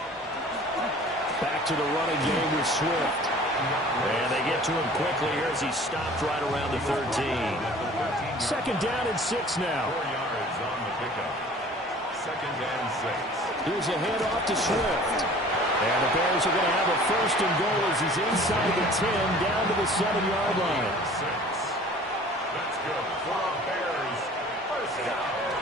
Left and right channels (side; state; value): both; normal; correlation 0.47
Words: Back to the running game with Swift. And they get to him quickly here as he's stopped right around the 13. 2nd down and 6 now. 4 yards on the pickup. 2nd and 6. Here's a handoff to Swift. And the Bears are going to have a 1st and goal as he's inside the 10 down to the 7-yard line. 6. That's good for a Bears first down.